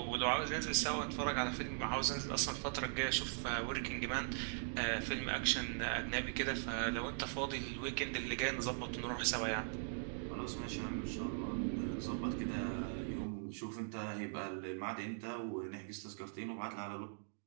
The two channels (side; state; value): left; silent; digital silence